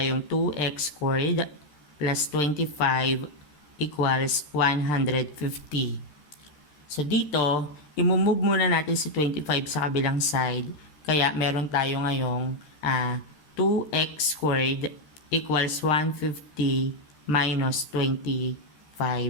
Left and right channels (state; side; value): late; right; 13 ms